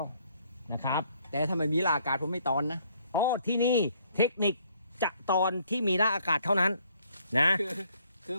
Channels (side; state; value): both; inverted; correlation -0.65